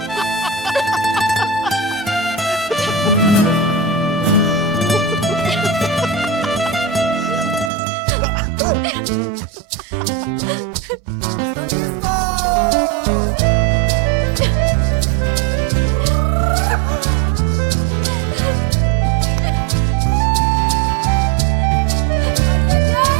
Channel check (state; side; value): drops out; left; at 7.7 s